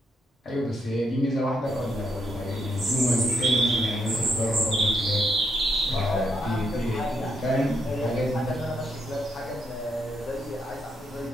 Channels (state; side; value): normal; both; correlation 0.78